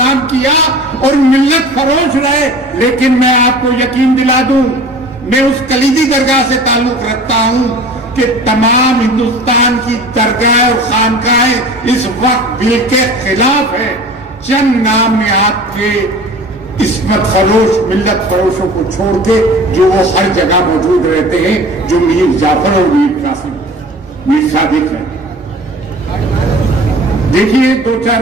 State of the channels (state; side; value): normal; both; correlation 0.42